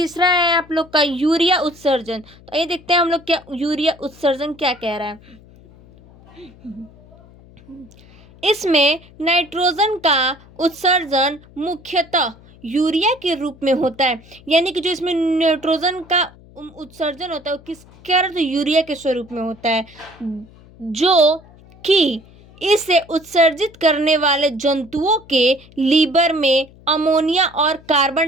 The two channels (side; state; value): left; noise; hum, 24 dB below the sound